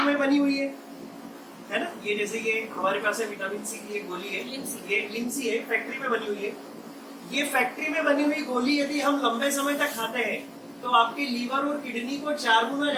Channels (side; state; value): both; identical; correlation 1.00